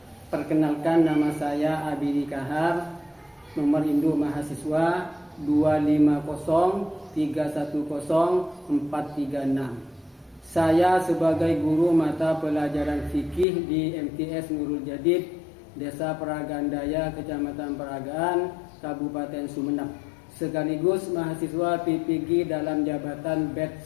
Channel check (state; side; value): drops out; right; at 13.5 s